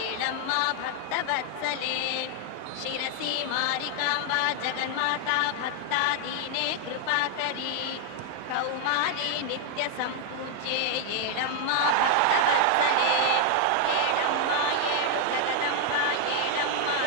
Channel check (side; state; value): both; different; correlation 0.00